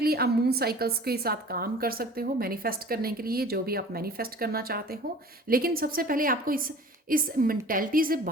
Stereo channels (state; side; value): normal; both; correlation 0.45